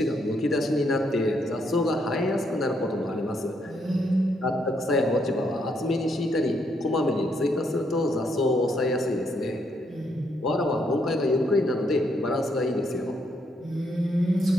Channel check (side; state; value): both; normal; correlation 0.75